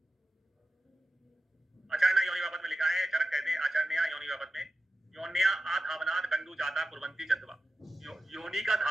आचार्य योनि व्यापक में लिखा है, चरक कहते हैं आचार्य योनि व्यापक में, योन्या आधावनाद कंडू जाता कुर्वंती चंदवा, योनि का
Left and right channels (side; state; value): both; normal; correlation 0.93